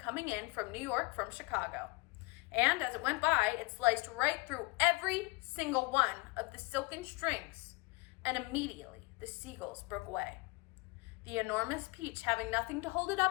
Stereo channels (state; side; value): quieter; right; 25.4 dB